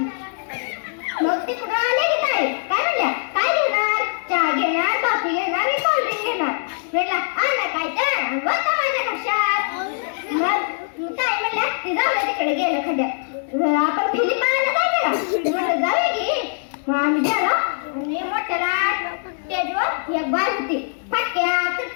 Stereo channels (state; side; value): silent; right; 64 dB below the other